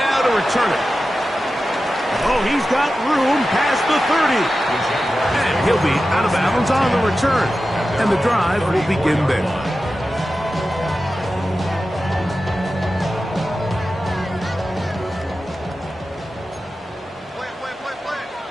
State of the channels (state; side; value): normal; both; correlation 0.93